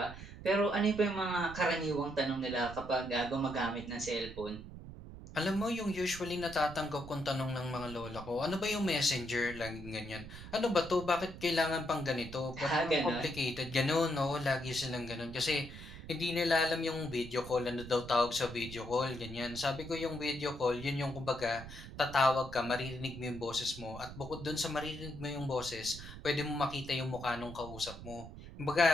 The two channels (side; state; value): right; noise; rumble, 13 dB below the sound